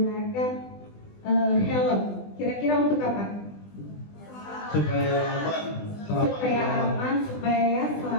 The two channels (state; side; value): late; right; 20 ms